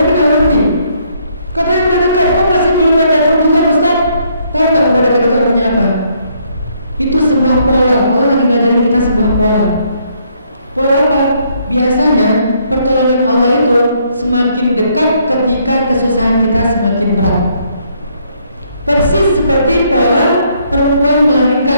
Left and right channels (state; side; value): inverted; both; correlation -0.69